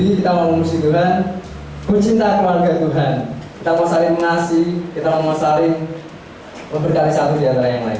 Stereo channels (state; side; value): identical; both; correlation 1.00